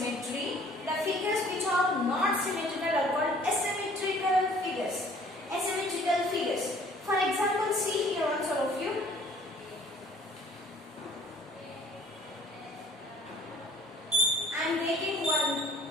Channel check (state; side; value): normal; both; correlation 0.55